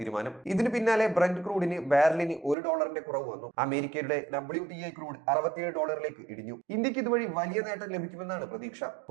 ഇതിന് പിന്നാലെ ബ്രന്റ് ക്രൂഡിന് ബാരലിന് $1 കുറവ് വന്നു. അമേരിക്കയുടെ WTI ക്രൂഡ് $67 ഇടിഞ്ഞു. ഇന്ത്യക്ക് ഇതുവഴി വലിയ നേട്ടം ലഭിക്കുമെന്നാണ് പ്രതീക്ഷ.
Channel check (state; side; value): drops out; left; at 2.6 s